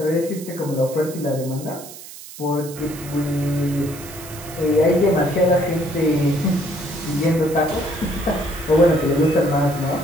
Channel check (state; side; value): noise; right; hiss, 15 dB below the sound